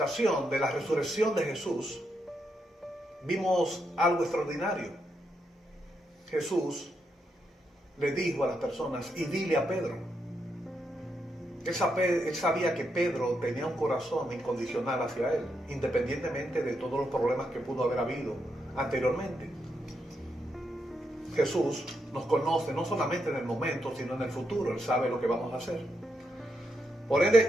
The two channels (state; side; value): normal; both; correlation 0.81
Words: de la resurrección de Jesús, vimos algo extraordinario. Jesús le dijo a las personas, y dile a Pedro. Él sabía que Pedro tenía un corazón incondicional hacia él, independientemente de todos los problemas que pudo haber habido anteriormente. Jesús nos conoce no solamente en el momento, sino en el futuro. Él sabe lo que vamos a hacer. Por